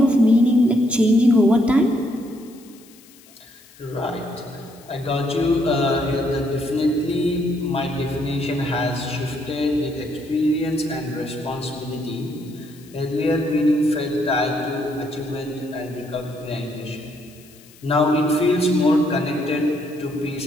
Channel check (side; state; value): left; noise; hiss, 25 dB below the sound